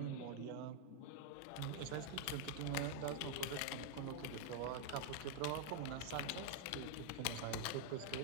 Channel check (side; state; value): both; different; correlation 0.00